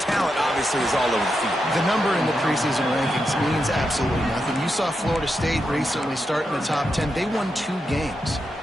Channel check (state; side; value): normal; both; correlation 0.86